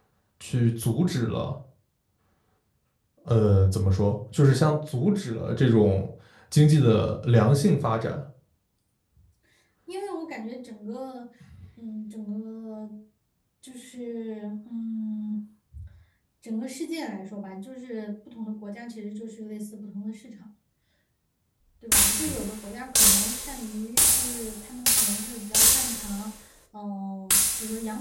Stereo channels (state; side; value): identical; both; correlation 1.00